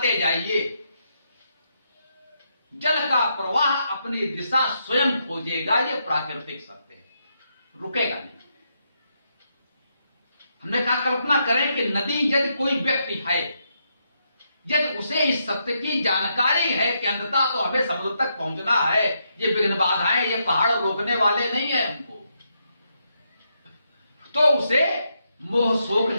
जाइए, जल का प्रवाह अपनी दिशा स्वयं खोजेगा, ये प्राकृतिक सत्य है, रुकेगा नहीं। हमने कहा कल्पना करें कि नदी, यदि कोई व्यक्ति है, यदि उसे इस सत्य की जानकारी है कि अंततः तो हमें समुद्र तक पहुंचना है, ये विघ्न बाधाएं, ये पहाड़ रोकने वाले नहीं है हमको, तो उसे मोह शोक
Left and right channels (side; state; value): both; inverted; correlation -0.80